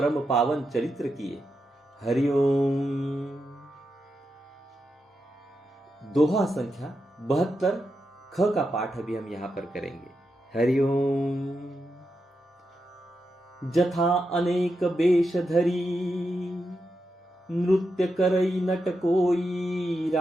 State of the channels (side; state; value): both; normal; correlation 0.86